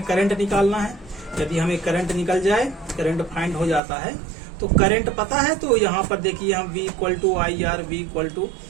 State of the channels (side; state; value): left; drops out; at 3.8 s